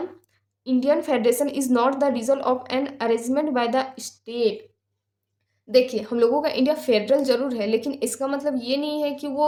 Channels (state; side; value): identical; both; correlation 1.00